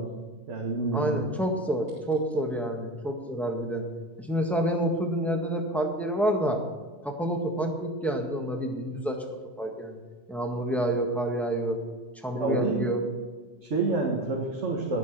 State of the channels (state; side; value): normal; both; correlation 0.31